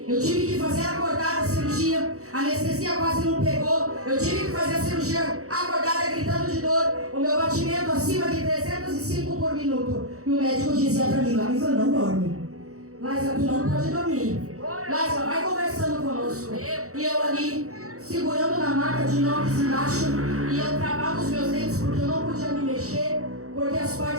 Eu tive que fazer acordada a cirurgia. A anestesia quase não pegou. Eu tive que fazer a cirurgia acordada, gritando de dor. O meu batimento acima de 305 por minuto. E o médico dizia para mim, Laísa, não dorme. Laísa, tu não pode dormir. Laísa, vai conversando conosco. E eu ali, segurando na maca de inox embaixo. E eu travava os meus dentes porque eu não podia me mexer. Porque as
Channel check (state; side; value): late; left; 0.65 ms